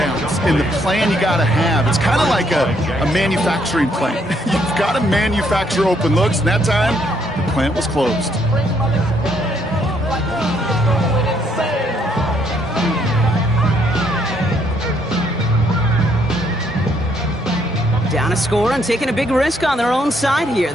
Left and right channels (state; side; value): normal; both; correlation 0.70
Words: and the plan you got to have. It's kind of like a manufacturing plant. You've got to manufacture open looks, and that time, the plant was closed. Down a score and taking a big risk on their own side here.